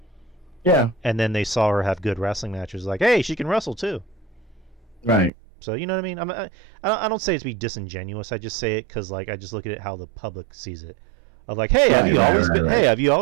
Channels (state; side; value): drops out; left; at 5.3 s